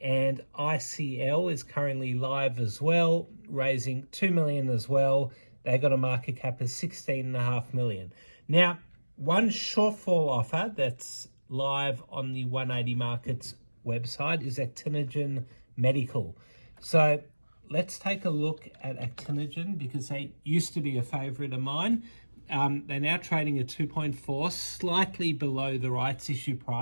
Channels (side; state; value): both; inverted; correlation -1.00